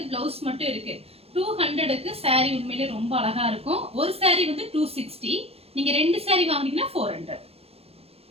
பிளவுஸ் மட்டும் இருக்கு. 200க்கு சாரி உண்மையிலே ரொம்ப அழகா இருக்கும். ஒரு சாரி வந்து 260, நீங்க ரெண்டு சாரி வாங்குனீங்கன்னா 400.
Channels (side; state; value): left; late; 0.29 ms